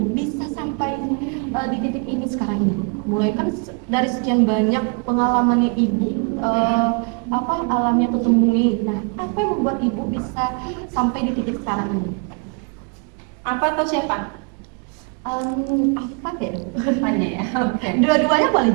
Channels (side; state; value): left; quieter; 33.6 dB